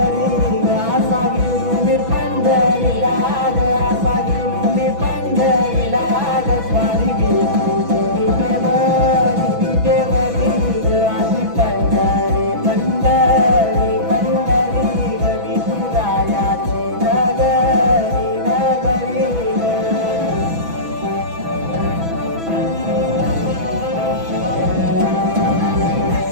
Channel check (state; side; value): late; left; 6.1 ms